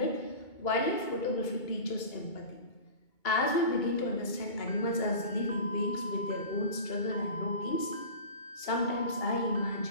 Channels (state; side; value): late; right; 2.3 ms